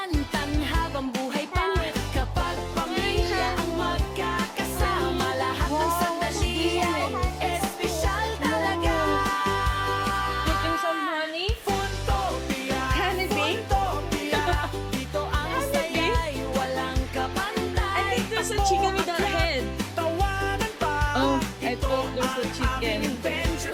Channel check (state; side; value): identical; both; correlation 1.00